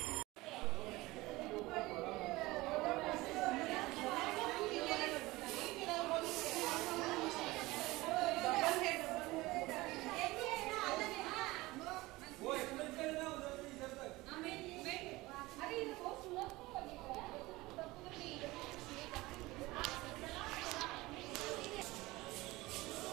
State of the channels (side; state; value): left; quieter; 20.3 dB